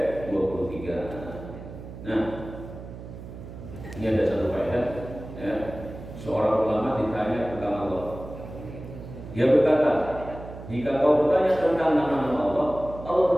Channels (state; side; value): noise; right; hum, 13 dB below the sound